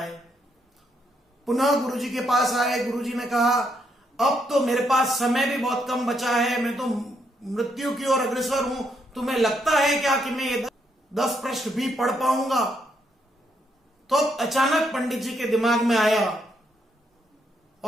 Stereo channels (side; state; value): both; normal; correlation 0.76